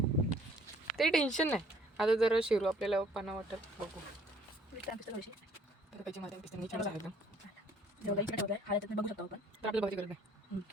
ते टेन्शन नाही. आता जरा शिरू आपल्याला पाना वाटत बघू. त्याची माझ्या पिस्तनी छान आहे, बघू शकतो आपण. तर आपल्याला बघायची गरज नाही.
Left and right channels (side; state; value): both; normal; correlation 0.60